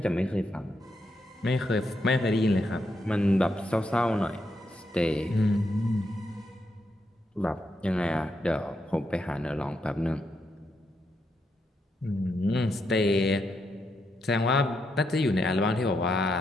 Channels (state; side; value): normal; both; correlation 0.81